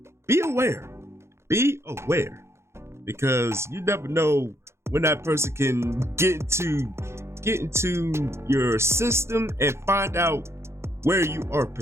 be aware. Be aware. Because you never know when that person can get into your system and find out where you are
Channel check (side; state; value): left; late; 0.13 ms